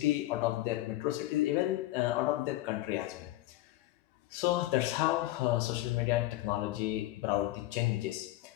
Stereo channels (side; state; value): right; quieter; 16.6 dB